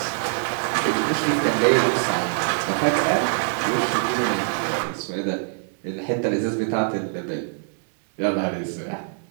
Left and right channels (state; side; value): silent; left; digital silence